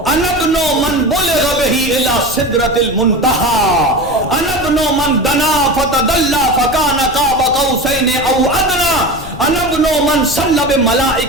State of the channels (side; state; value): left; noise; rumble, 14 dB below the sound